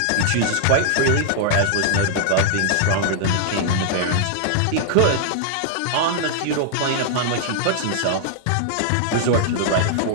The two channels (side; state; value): both; different; correlation -0.01